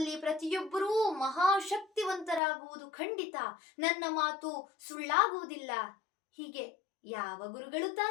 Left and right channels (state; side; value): drops out; right; at 2.4 s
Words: ಪ್ರತಿಯೊಬ್ಬರೂ ಮಹಾಶಕ್ತಿವಂತರಾಗುವುದು ಖಂಡಿತ. ನನ್ನ ಮಾತು ಸುಳ್ಳಾಗುವುದಿಲ್ಲ. ಹೀಗೆ ಯಾವ ಗುರುಗಳು